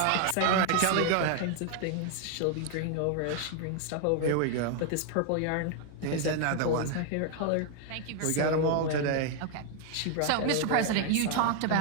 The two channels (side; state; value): both; different; correlation 0.00